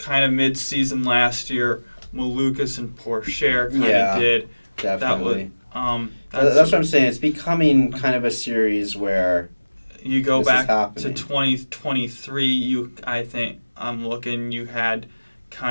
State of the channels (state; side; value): inverted; both; correlation -1.00